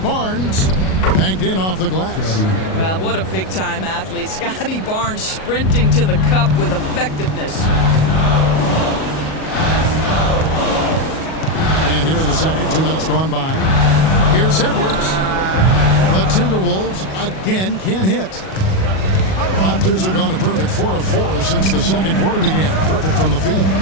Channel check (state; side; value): late; right; 37 ms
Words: Banked in off the glass. Well, what a big-time athlete. Scotty Barnes sprinting to the cup with effectiveness. And here in the second, 2 minutes gone by. Here's Edwards. The Timberwolves again can't hit. Raptors have gone a perfect 4 of 4 since the second quarter began. Perfect from the field.